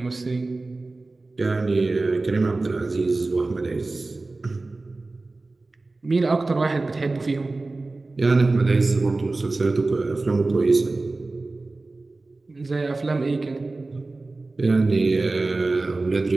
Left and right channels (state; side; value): quieter; left; 3.3 dB